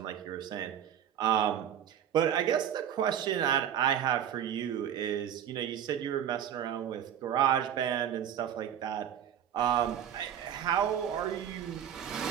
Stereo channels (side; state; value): left; quieter; 9.7 dB